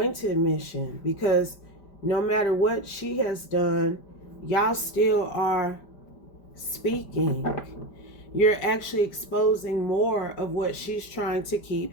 mission, because no matter what she has done, y'all still are speaking. You're actually exposing more of what she's trying to keep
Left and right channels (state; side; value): late; right; 5.1 ms